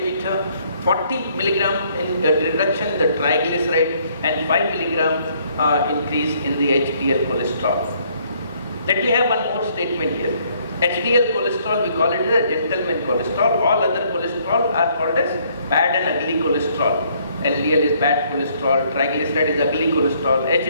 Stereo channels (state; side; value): inverted; both; correlation -0.66